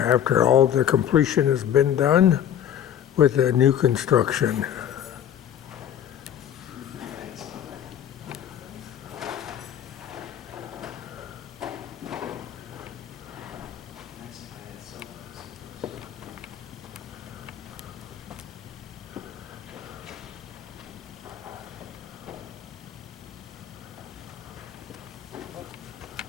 all the completion has been done with the new construction.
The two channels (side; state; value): right; quieter; 10.1 dB